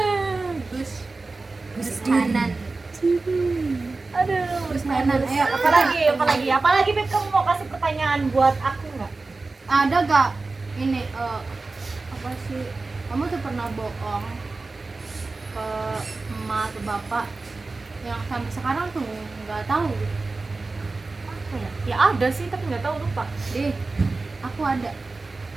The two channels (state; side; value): quieter; left; 3.6 dB